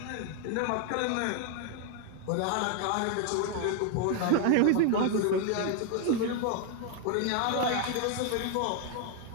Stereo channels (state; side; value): different; both; correlation 0.01